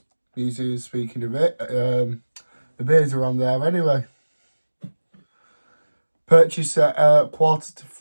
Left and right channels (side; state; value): both; inverted; correlation -1.00